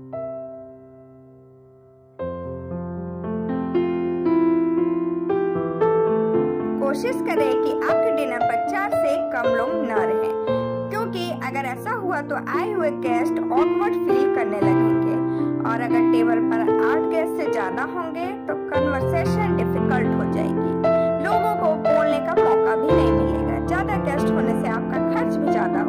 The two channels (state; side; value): identical; both; correlation 1.00